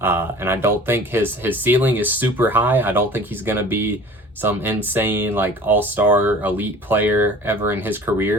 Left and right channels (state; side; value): normal; both; correlation 0.43